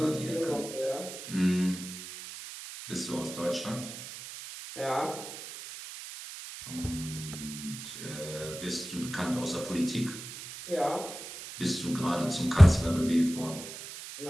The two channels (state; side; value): noise; right; hiss, 11 dB below the sound